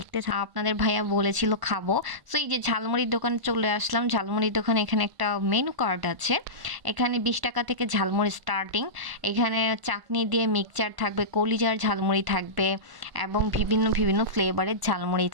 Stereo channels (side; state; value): left; late; 1.1 ms